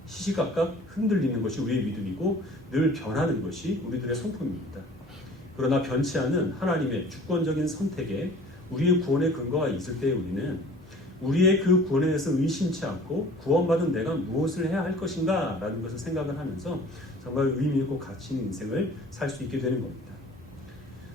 시시각각 흔들리는 것이 우리의 믿음이고 늘 변하는 것이 우리들의 성품입니다. 그러나 변치 않은 하나님의 주권적인 선택에 우리의 구원의 근거가 있을 때 우리는 우리의 그 구원에 대해서 의심치 않고 구원받은 내가 무엇을 해야 할 것인가 라는 것을 생각을 하면서 정말 의미 있고 가치 있는 인생을 살 수 있게 되는 겁니다.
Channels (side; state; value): both; normal; correlation 0.47